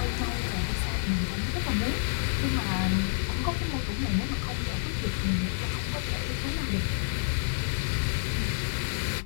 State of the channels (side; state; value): right; silent; digital silence